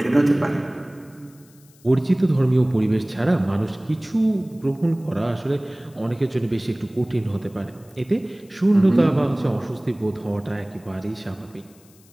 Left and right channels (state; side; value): noise; left; hiss, 28 dB below the sound